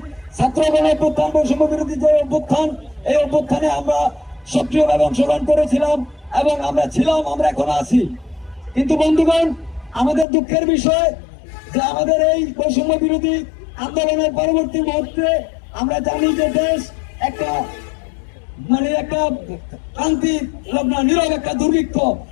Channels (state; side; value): drops out; right; at 10.2 s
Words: ছাত্র গণ অভ্যুত্থান, বৈষম্য বিরোধী যে অভ্যুত্থান, এই অভ্যুত্থানে আমরা সক্রিয়ভাবে অংশগ্রহণ করেছিলাম এবং আমরা ছিলাম, আমরা এখনো আছি। কিন্তু বন্ধুগণ, আমাদের দুঃখের বিষয় যে আমাদের এই বৈষম্য বিরোধী আন্দোলনের পরবর্তী মুহূর্তে আমরা জানি যে দেশ একটা ক্রান্তি নীরব একটা দুর্ভিক্ষ,